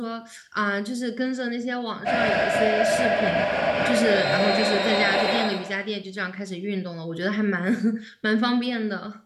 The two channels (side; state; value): both; identical; correlation 1.00